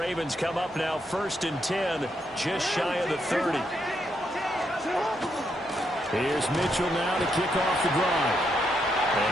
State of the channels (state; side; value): normal; both; correlation 0.79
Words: come up now 1st and 10, just shy of the 30. Here's Mitchell now to kick off the drive.